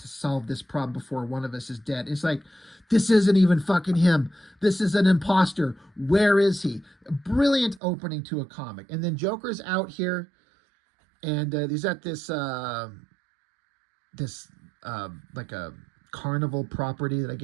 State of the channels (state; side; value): drops out; left; at 7.8 s